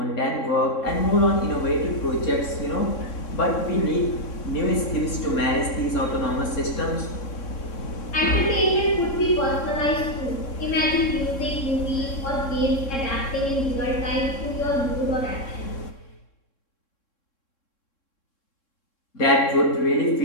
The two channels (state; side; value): late; right; 3.7 ms